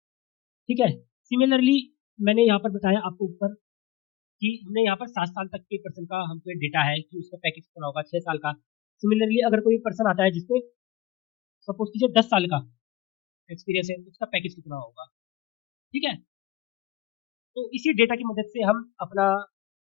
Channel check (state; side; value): quieter; right; 15.7 dB